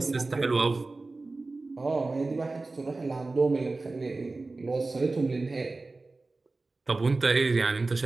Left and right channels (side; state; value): left; quieter; 3.4 dB